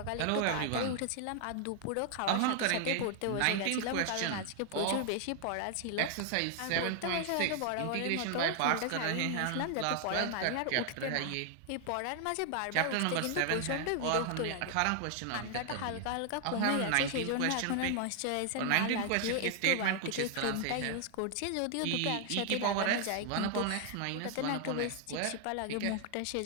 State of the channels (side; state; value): both; different; correlation 0.00